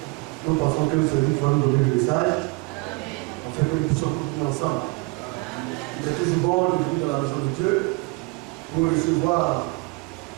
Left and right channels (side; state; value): left; quieter; 27.4 dB